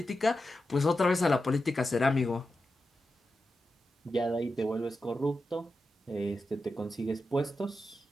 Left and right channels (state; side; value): normal; both; correlation 0.90